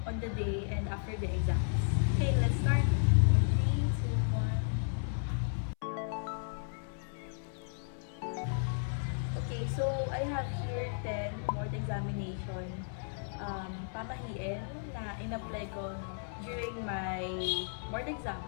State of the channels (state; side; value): silent; right; 55 dB below the other